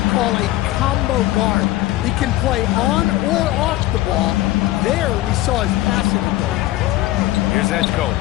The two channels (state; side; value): quieter; right; 16.3 dB